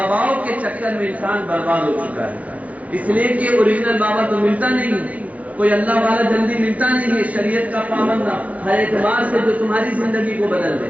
کے چکر میں انسان برباد ہو چکا ہے۔ اس لیے کہ اوریجنل بابا تو ملتا نہیں ہے، کوئی اللہ والا جلدی ملتا نہیں ہے، شریعت کا پابند ہر اعتبار سے جو تمہاری زندگی کو بدل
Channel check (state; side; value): late; left; 0.069 ms